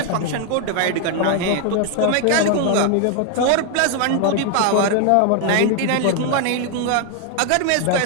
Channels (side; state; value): both; different; correlation 0.00